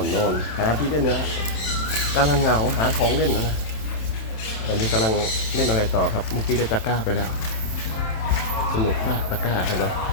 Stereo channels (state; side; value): late; right; 27 ms